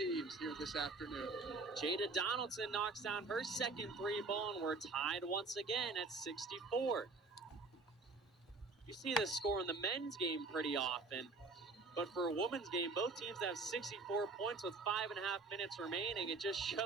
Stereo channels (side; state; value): left; quieter; 3.7 dB